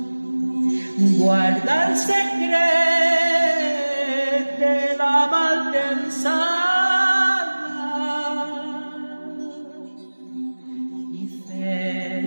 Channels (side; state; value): both; inverted; correlation -1.00